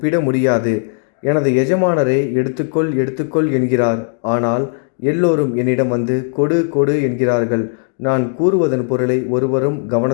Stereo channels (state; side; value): silent; right; 55 dB below the other